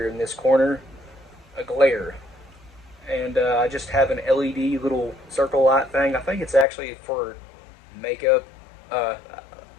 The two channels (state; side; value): drops out; right; at 6.7 s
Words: in this corner, a glare. And I just have an LED little circle light thing. I think it's actually for makeup.